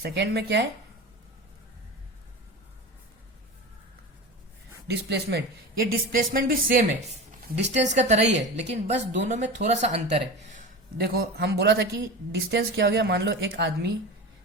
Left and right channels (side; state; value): both; normal; correlation 0.29